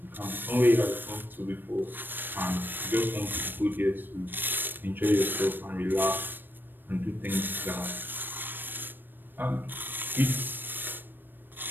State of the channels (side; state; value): left; late; 0.093 ms